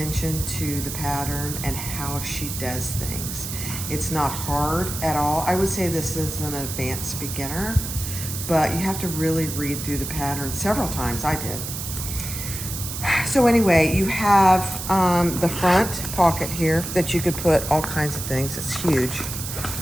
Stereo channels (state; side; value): noise; right; hiss, 6 dB below the sound